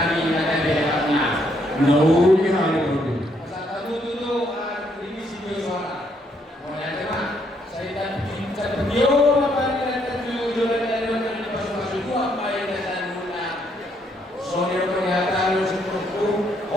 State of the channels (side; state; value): both; normal; correlation 0.72